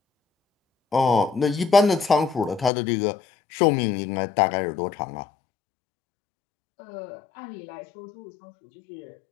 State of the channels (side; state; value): right; drops out; at 2.7 s